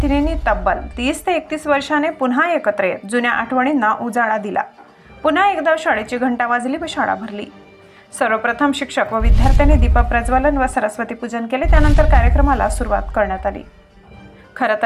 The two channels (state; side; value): identical; both; correlation 1.00